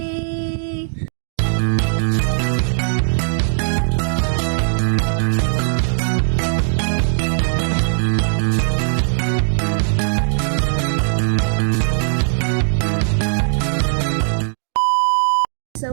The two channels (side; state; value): left; silent; digital silence